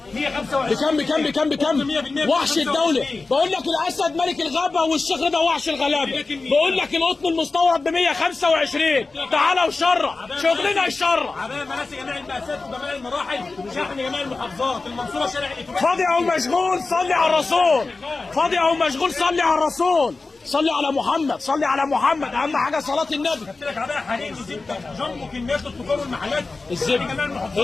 125 بكام؟ وحش الدوله. بقول لك الاسد ملك الغابه والشيخ ده وحش الغلابه. بقول لك القطن المستورد ب 125. تعالى وشرع، شغلنا يشرع. عباية مناسك جميع المقاسات وجميع المراحل، شحن جميع المحافظات. المنصوره شارع الاتوبيس. فاضي او مشغول صلي على الرسول، فاضي او مشغول صلي على الرسول. صلي على محمد، صلي على محمد. اهم حاجه صلاه النبي. جبت لك عباية حرير وزبده جنبه كميات التجار والمحلات.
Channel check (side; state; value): right; quieter; 3.7 dB